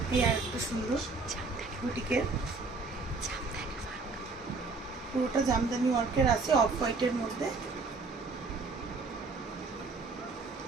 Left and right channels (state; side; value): quieter; left; 4.0 dB